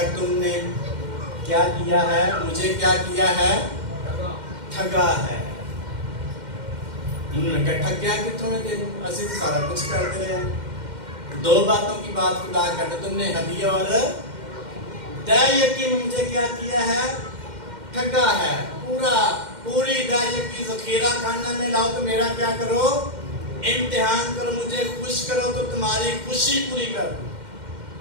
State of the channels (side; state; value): left; late; 2.1 ms